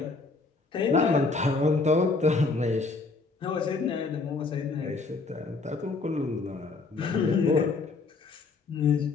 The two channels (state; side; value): quieter; right; 4.0 dB